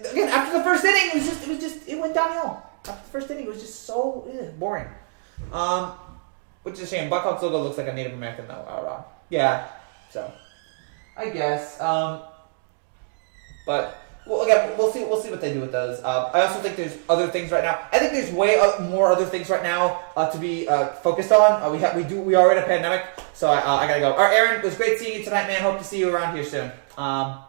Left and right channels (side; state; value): left; silent; digital silence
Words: after the first inning, it went downhill. After the first inning, it was just so boring. Which is a shame. Blackhawks logo looks like a Native American though. Yeah, so I guess. But well, again, we'll see what they do with those. I also think there's other things right now. I think there's way more other things right now to be focused on. We are in a pandemic, so I gotta go. All right, Aaron, it was great seeing you tonight, man. Hope to see you around here soon. But